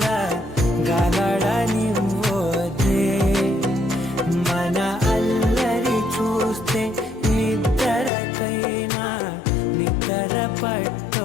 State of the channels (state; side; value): drops out; right; at 8.1 s